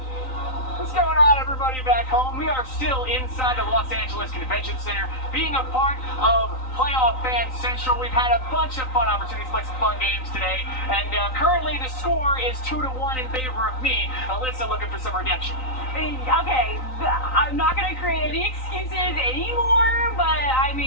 What's going on, everybody back home? We are still inside the Los Angeles Convention Center, being a part of Playoff Fan Central. We've had a bunch of fun opportunities to play some fun games today, and currently the score is 2-1 in favor of me. Alyssa looking for some redemption. Okay, I'm not going to create any excuses anymore, but I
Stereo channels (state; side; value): late; right; 3.9 ms